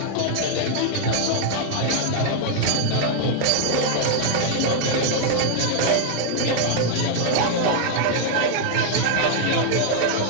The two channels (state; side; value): different; both; correlation -0.01